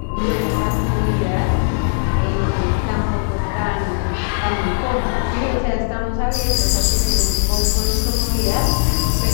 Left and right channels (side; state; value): right; silent; digital silence